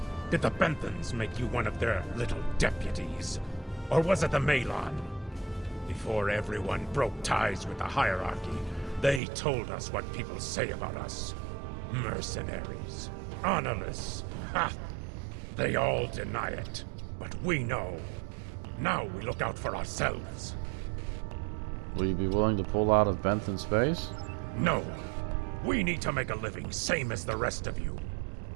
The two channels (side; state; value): left; drops out; at 9.2 s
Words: Did the Benthans make you one of their little deputies? Or was it the Malon? Before everyone broke ties with the hierarchy, they told us what people say about us. Mercenaries. Honorless. Ha! They all deny it. But we know. Now we look out for ourselves. Will you be willing to pull out of Benthan space? No. We need to make a living, same as the rest of you.